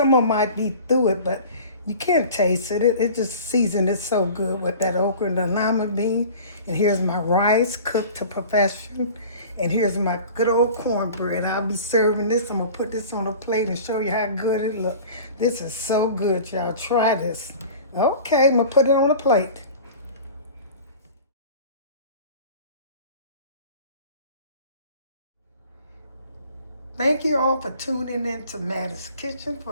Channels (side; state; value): both; inverted; correlation -0.42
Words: of them might be through it, but you can't taste it. It just seasoned it so good with that okra and the lima bean. And here's my rice cooked to perfection. And here's my good old cornbread. I'll be serving this. I'm gonna put this on a plate and show you how good it looks. This is so good, y'all. Try this. Okay, I'm gonna put it on a plate. Thank you all for tuning in to Mattie's Kitchen